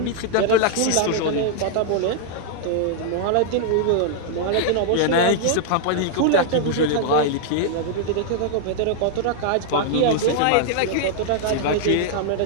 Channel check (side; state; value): both; different; correlation -0.01